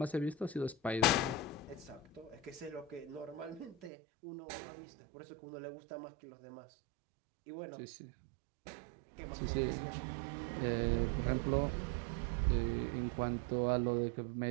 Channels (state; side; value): drops out; left; at 3.9 s